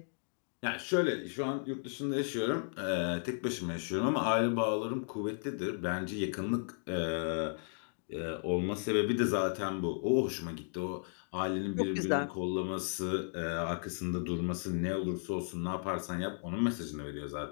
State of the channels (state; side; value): silent; right; digital silence